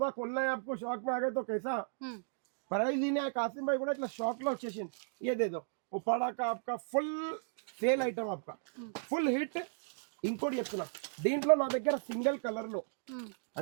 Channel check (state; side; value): silent; left; digital silence